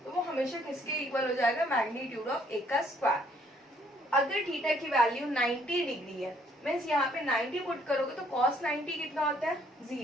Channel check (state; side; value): normal; both; correlation 0.65